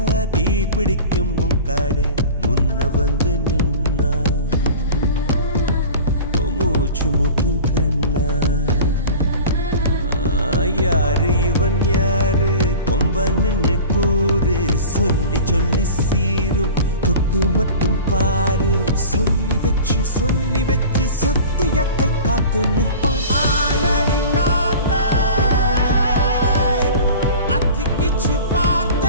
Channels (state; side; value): inverted; both; correlation -0.38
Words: தீ பிடிக்கும் காடு முன்ன வந்து நின்னா மூச்சு முட்டும் கண்ணா யாரு இவன் யாரு கொம்பன்னு கூறு சொல்லி சொல்லி சீரும் தொட்டு மட்டும் பாரு சொல்லி வச்சு சத்தியத்தை காத்து நிற்பான் ஆளடி காத்தே அத்திக்கிச்சு